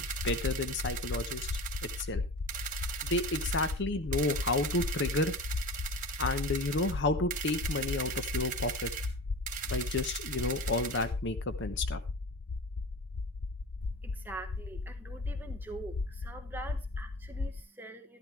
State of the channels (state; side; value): normal; both; correlation 0.33